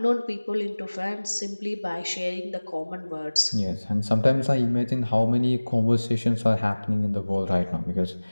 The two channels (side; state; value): both; inverted; correlation -1.00